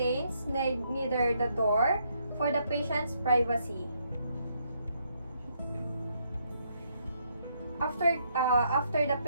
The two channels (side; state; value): both; inverted; correlation -0.74